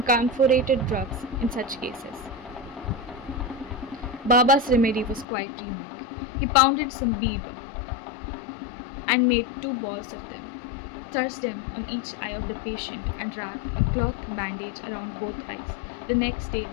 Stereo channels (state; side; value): drops out; right; at 5.2 s